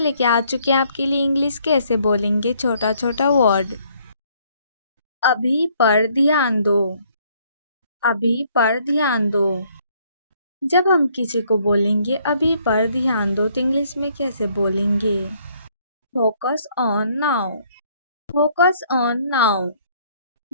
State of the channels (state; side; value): inverted; both; correlation -0.65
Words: आ चुके हैं आपके लिए इंग्लिश कैसे बोलेंगे छोटा छोटा वर्ड। अभी पर ध्यान दो। अभी पर ध्यान दो। जब हम किसी को बोलेंगे अभी पर ध्यान दो तो इंग्लिश में कैसे बोलेंगे? Focus on now. Focus on now.